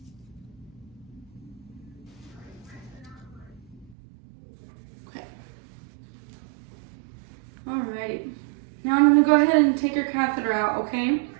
Okay. Alrighty. Now I'm gonna go ahead and take your catheter out, okay?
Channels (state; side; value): drops out; left; at 4.0 s